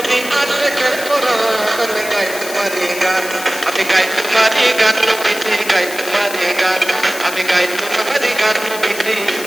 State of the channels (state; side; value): noise; left; hiss, 10 dB below the sound